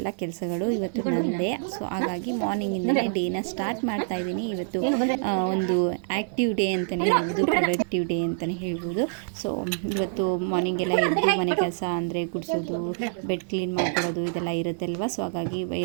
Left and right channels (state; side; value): silent; left; digital silence